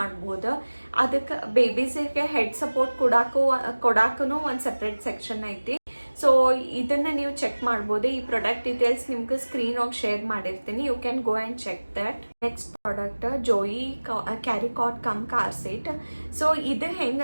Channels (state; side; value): inverted; both; correlation -1.00